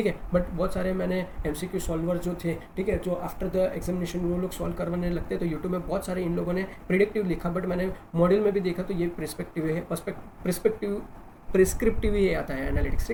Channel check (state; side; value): identical; both; correlation 1.00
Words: है। बट बहुत सारे मैंने एमसीक्यू सॉल्वर जो थे, ठीक है, जो आफ्टर द एग्जामिनेशन वो लोग सॉल्व करवाने लगते हैं, तो यूट्यूब में बहुत सारे इन लोगों ने प्रिडिक्टिव लिखा, बट मैंने मॉडल में भी देखा तो ये प्रिस्पेक्टिव है, प्रिस्क्रिप्टिव ही आता है एनालिटिक्स।